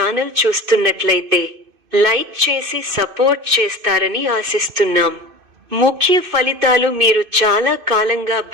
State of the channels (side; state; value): left; late; 2.5 ms